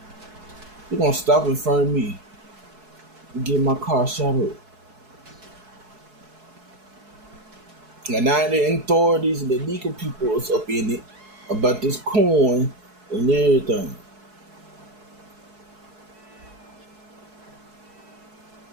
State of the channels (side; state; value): left; late; 4.7 ms